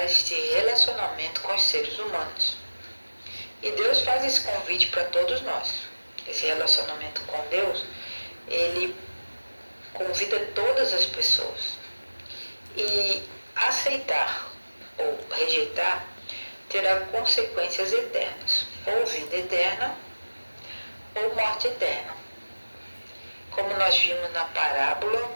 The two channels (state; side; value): inverted; both; correlation -1.00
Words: este relacionamento com os seres humanos. E Deus faz esse convite para todos nós. Esse relacionamento com Deus, ele convida todas as pessoas. E aceitar ou rejeitar terá consequências eternas, ou vida eterna, ou morte eterna, como nós vimos na parábola